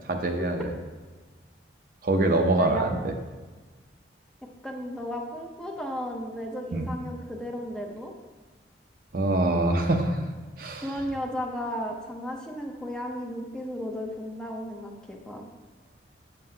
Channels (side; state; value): both; normal; correlation 0.45